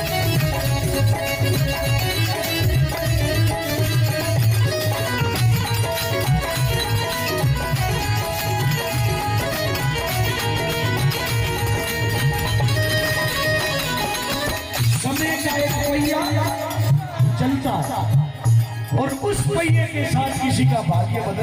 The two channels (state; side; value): identical; both; correlation 1.00